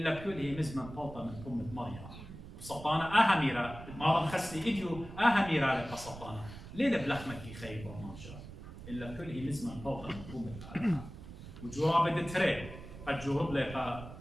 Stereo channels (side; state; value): right; noise; rumble, 13 dB below the sound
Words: كله مزمن بلطة من أمة مريم وسطانة أهميرا مارا خسني إديو أهميرا لك سطانة ليه بلحمة كي خيي برماشة إلا كله مزمن بلطة من أمة آلها وجواب التري قد جرب لك